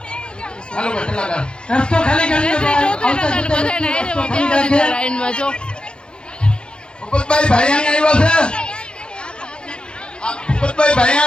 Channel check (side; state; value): right; late; 0.052 ms